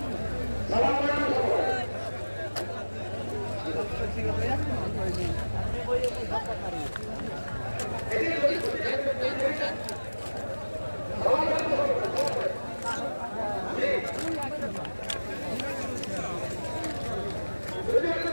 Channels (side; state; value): both; inverted; correlation -1.00